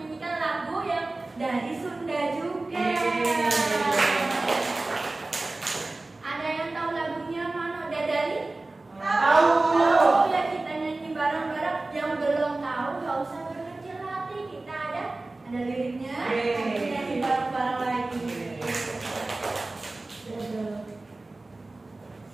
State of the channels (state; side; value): quieter; left; 3.1 dB